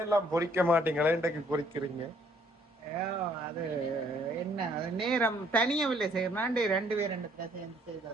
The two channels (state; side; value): normal; both; correlation 0.64